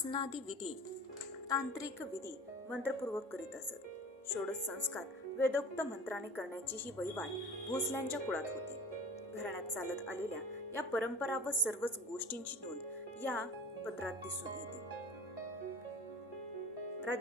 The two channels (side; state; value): both; normal; correlation 0.40